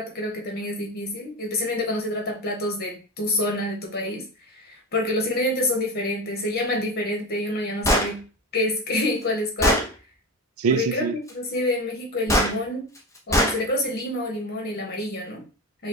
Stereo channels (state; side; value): normal; both; correlation 0.23